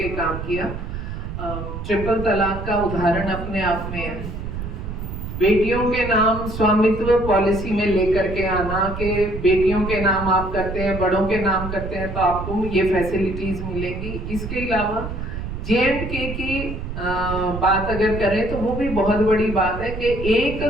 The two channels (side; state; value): right; noise; rumble, 7 dB below the sound